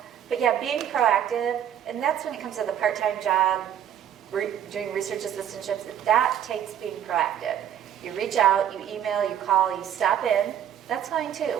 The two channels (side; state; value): left; quieter; 10.0 dB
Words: But yeah, being proactive, and that's when it comes to the part-time job, doing research assistantships, that takes being proactive. You reach out, you email, you call, you stop in, that's fine